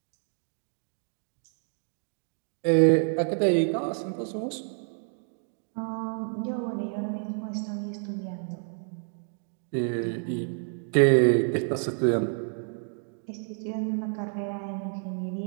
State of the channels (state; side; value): silent; left; 59 dB below the other